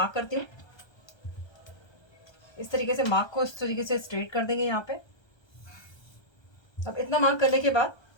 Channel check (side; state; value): right; late; 1.3 ms